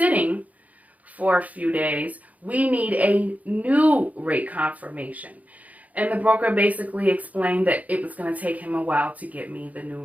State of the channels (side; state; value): left; late; 0.074 ms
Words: for a few days, we need a new rate confirmation. And the broker basically explained that it was going to take him a while to get me the new